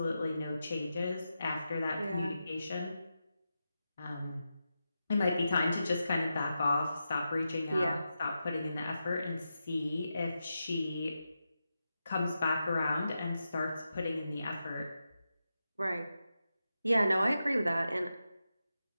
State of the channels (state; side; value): inverted; both; correlation -0.89